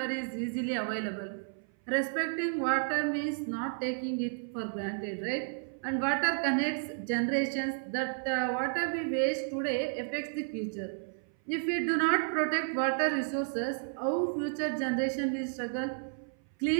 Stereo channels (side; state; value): left; silent; 56 dB below the other